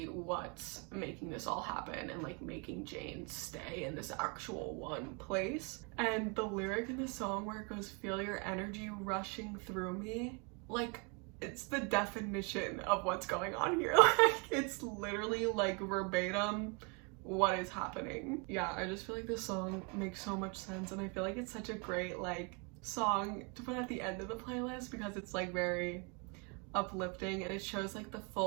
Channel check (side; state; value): left; quieter; 33.6 dB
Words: what's making this all happen and like making Jane stay in this actual one place. And the lyric in the song where it goes, feel your energy rushing through me, like it's the definition of what's going on here. Like, it's literally like verbatim what is happening. Yeah, I just feel like this song makes so much sense, and I feel like it's such a great like song to put at the end of the playlist because it's like very uplifting and it shows like the